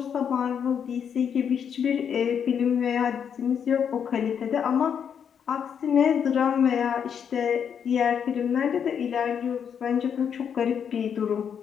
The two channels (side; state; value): right; quieter; 7.8 dB